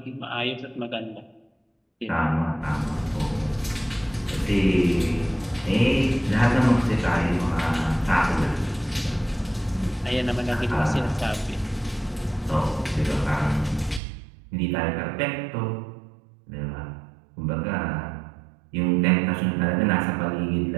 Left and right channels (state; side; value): drops out; left; at 14.0 s